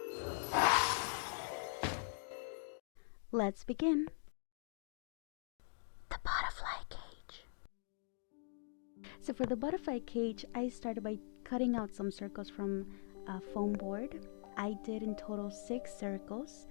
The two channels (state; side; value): silent; right; digital silence